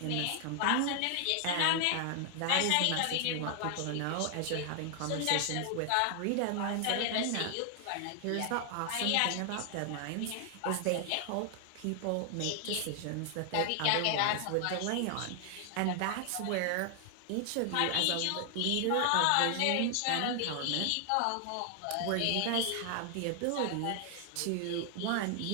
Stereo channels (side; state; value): both; different; correlation 0.00